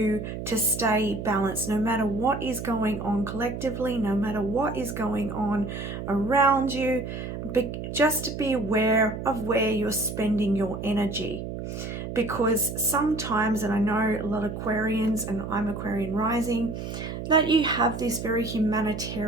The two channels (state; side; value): noise; right; hum, 7 dB below the sound